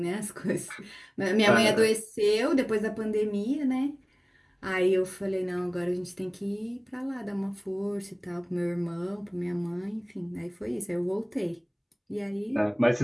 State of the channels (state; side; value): identical; both; correlation 1.00